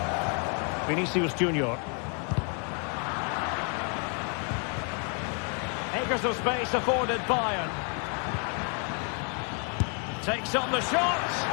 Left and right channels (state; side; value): quieter; right; 39.4 dB